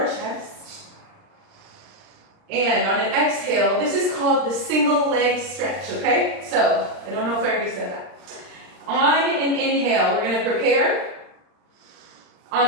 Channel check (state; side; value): late; left; 39 ms